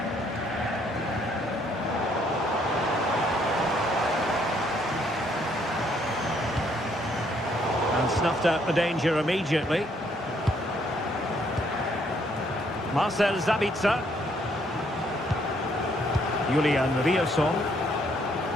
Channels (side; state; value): both; normal; correlation 0.68